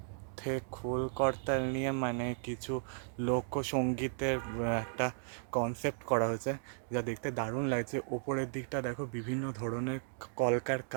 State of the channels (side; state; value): left; silent; digital silence